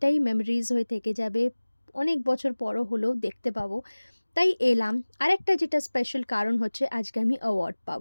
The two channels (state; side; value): inverted; both; correlation -1.00